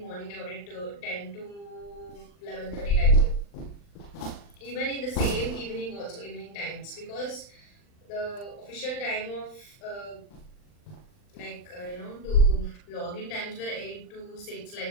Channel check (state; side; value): late; right; 39 ms